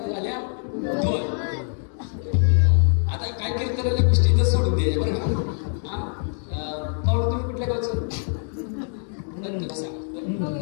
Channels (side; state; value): right; silent; 61 dB below the other